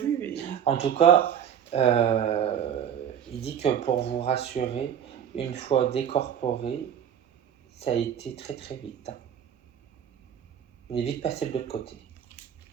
Et... En tout cas, il dit que pour vous rassurer, une fois décorporé, ça a été très très vite. Il est vite passé de l'autre côté.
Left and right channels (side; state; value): left; quieter; 9.1 dB